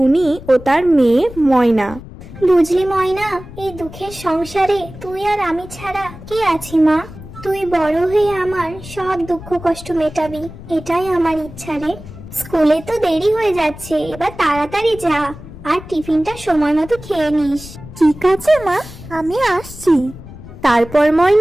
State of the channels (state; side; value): noise; left; rumble, 15 dB below the sound